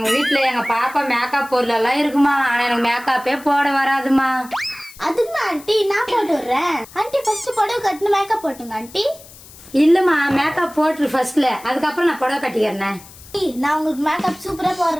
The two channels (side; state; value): left; noise; hiss, 20 dB below the sound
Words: வீட்டுல எங்க பாப்பா மேக்கப் பொருள் எல்லாம் இருக்குமா, ஆனா எனக்கு மேக்கப்பே போட வராதுமா. அதுக்கு ஆண்டி நான் போட்டு விடுறேன். ஆண்டி ஃபர்ஸ்ட் புடவை கட்டின மேக்கப் போட்டுங்க. ஆண்டி இல்லம்மா மேக்கப் போட்டுரு ஃபர்ஸ்ட்ல, அதுக்கப்புறம் நான் புடவை கட்டிக்கிறேன். நான் உங்களுக்கு மேக்கப் சூப்பரா